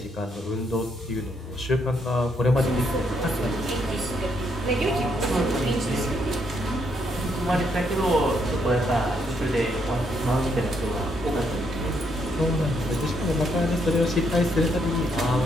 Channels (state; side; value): normal; both; correlation 0.74